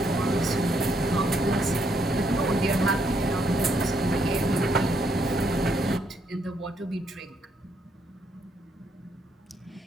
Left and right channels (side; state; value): both; normal; correlation 0.74